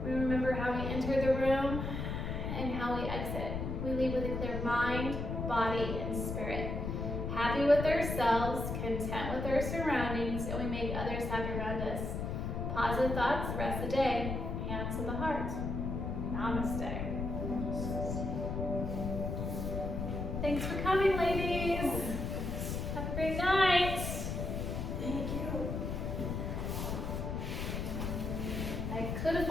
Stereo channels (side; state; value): left; noise; rumble, 3 dB below the sound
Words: We remember how we enter the room and how we exit. We leave with a clear mind, body, and spirit. Happy with ourselves, content with our surroundings, and we make others happy around us. Positive thoughts the rest of the day. Hands to the heart. Namaste. Thanks for coming, ladies. Have a great night. Thank you. I could have